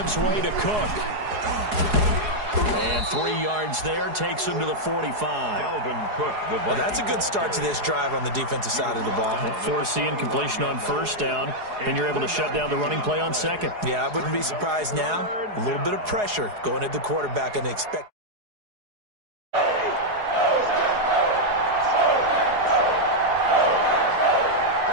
way to Cook. And 3 yards there takes him to the 45. Dalvin Cook, well, that's a good start to this drive on the defensive side of the ball. Forcing completion on first down, and you're able to shut down the running play on second. Yeah, I wouldn't be surprised now. A little bit of pressure going at the quarterback and expect.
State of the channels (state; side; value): late; left; 4.8 ms